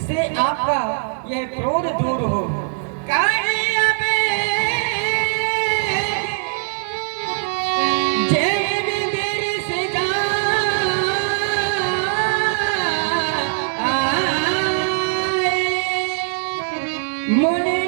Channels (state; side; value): silent; left; digital silence